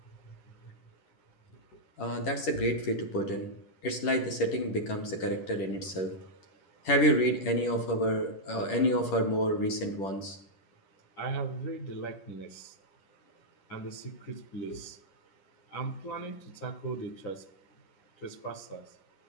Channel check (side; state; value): right; late; 10 ms